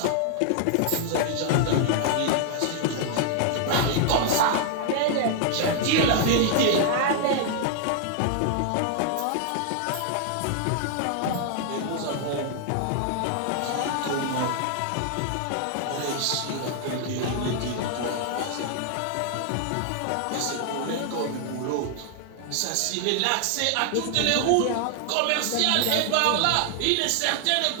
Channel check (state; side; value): different; both; correlation 0.00